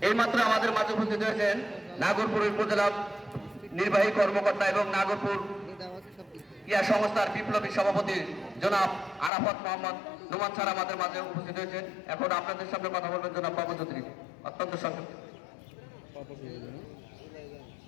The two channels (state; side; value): drops out; right; at 9.3 s